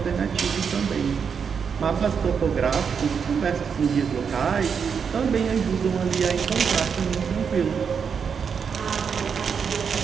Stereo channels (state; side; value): quieter; left; 6.5 dB